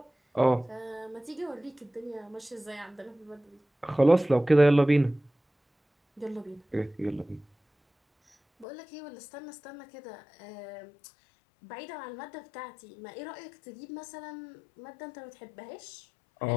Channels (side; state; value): right; drops out; at 8.7 s